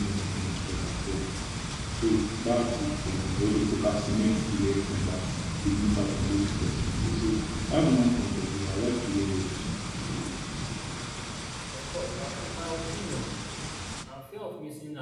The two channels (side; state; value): both; identical; correlation 1.00